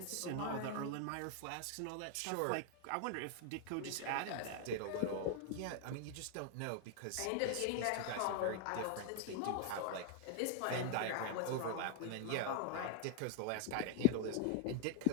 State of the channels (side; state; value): both; different; correlation 0.00